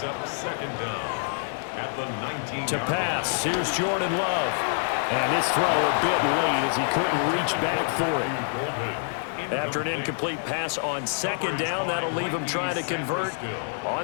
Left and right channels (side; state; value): right; silent; digital silence